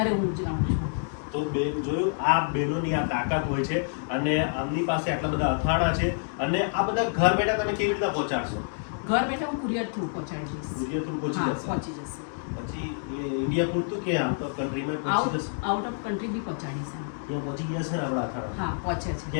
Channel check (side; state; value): right; silent; digital silence